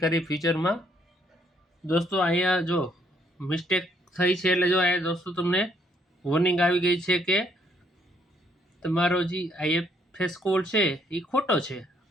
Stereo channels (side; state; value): both; normal; correlation 0.69